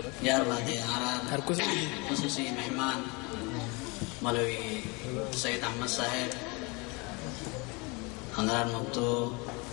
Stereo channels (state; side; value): quieter; right; 28.4 dB